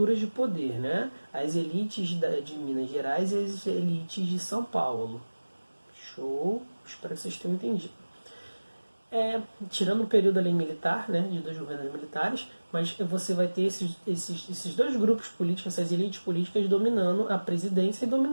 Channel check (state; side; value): inverted; both; correlation -1.00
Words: de poder, né? As elites de Minas Gerais e as elites de São Paulo. Show? Espero que vocês tenham entendido. Tirando o período ali militar, né, de dois governos militares, mas você vai ter esses dois grupos políticos, essas elites políticas dominando a presidência e